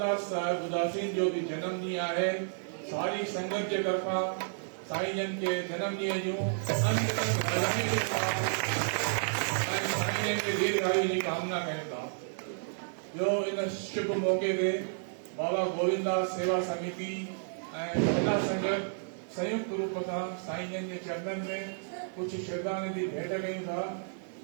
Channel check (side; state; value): left; silent; 57 dB below the other